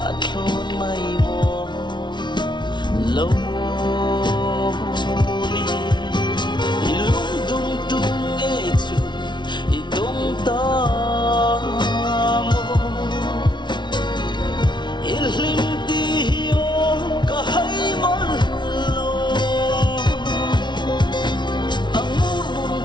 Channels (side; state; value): right; late; 0.22 ms